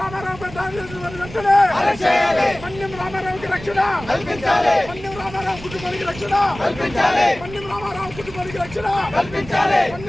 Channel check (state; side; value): noise; right; rumble, 15 dB below the sound